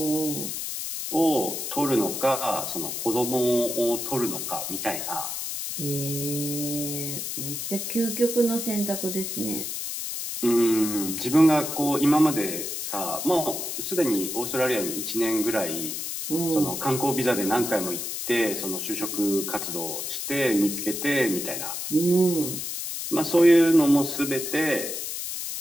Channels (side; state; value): left; noise; hiss, 5 dB below the sound